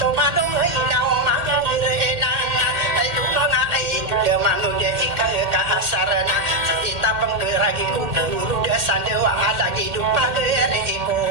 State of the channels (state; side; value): late; left; 1.8 ms